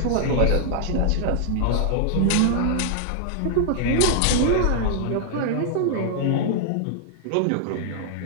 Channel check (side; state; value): both; different; correlation -0.01